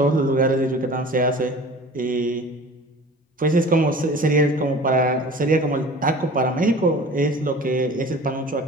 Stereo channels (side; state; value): both; normal; correlation 0.41